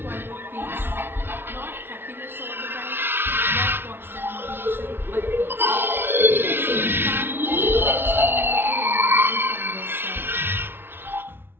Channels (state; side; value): late; left; 0.11 ms